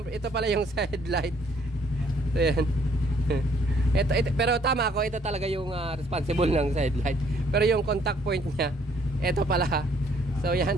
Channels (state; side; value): normal; both; correlation 0.64